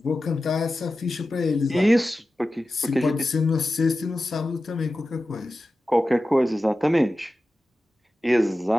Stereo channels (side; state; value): both; normal; correlation 0.94